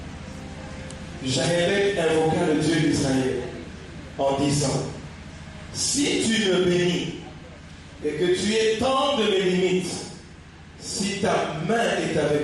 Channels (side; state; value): both; identical; correlation 1.00